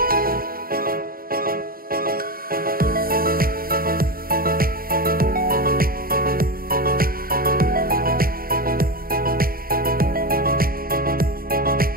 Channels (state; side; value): late; left; 0.43 ms